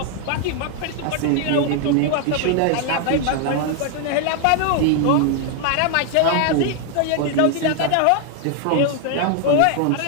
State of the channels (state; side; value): different; both; correlation 0.00